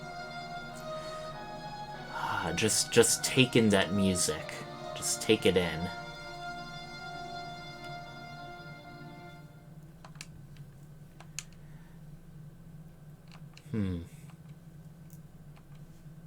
Just take in that music. Just take it in.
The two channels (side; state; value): both; identical; correlation 1.00